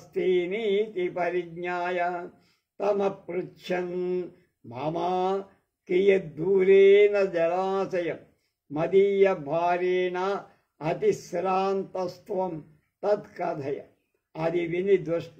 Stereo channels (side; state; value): both; identical; correlation 1.00